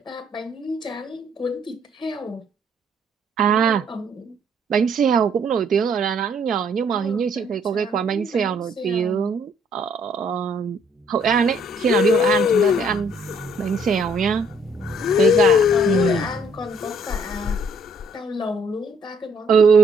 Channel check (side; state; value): both; normal; correlation 0.65